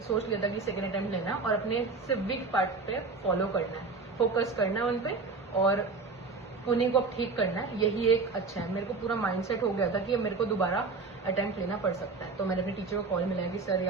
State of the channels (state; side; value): quieter; left; 4.1 dB